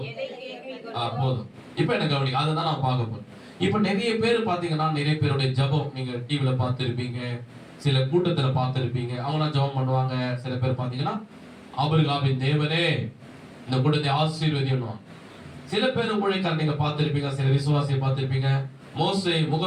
போதும். இப்ப எனக்கு கவனிங்க, அதுதான் நான் பார்க்க போறேன். இப்ப நிறைய பேர் பாத்தீங்கன்னா, நிறைய பேருடைய ஜெபம் நீங்க டிவில பார்த்திருப்பீங்க, சில கூட்டத்துல பார்த்திருப்பீங்க. அவங்க ஜெபம் பண்ணுவாங்க. சில பேர் பாத்தீங்கன்னா, ஆபிரகாமின் தேவனே இந்த கூட்டத்தை ஆசீர்வதியும். சில பேர் ஊழியக்காரர் நீங்க பார்த்திருப்பீங்க, சில விசுவாசியை பார்த்திருப்பீங்க, மோசே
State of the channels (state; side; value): identical; both; correlation 1.00